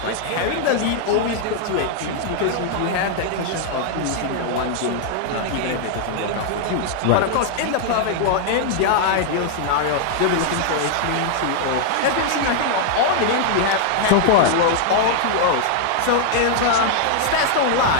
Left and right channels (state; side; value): different; both; correlation 0.00